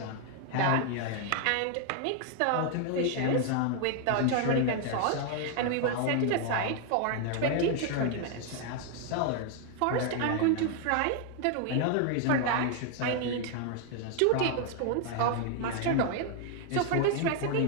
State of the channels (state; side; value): different; both; correlation 0.00